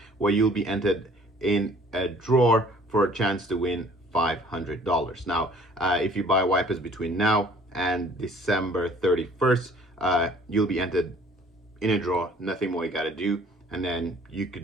where you'll be entered in a draw for a chance to win $500. Now if you buy wipers between now and December 31st, you'll be entered in a draw. Nothing more you got to do, and then you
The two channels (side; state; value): both; normal; correlation 0.55